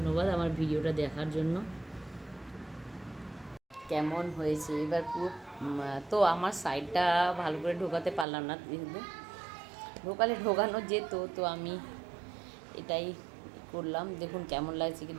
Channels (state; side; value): drops out; left; at 8.2 s